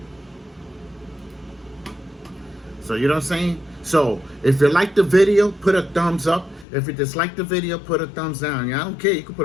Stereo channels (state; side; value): drops out; right; at 6.7 s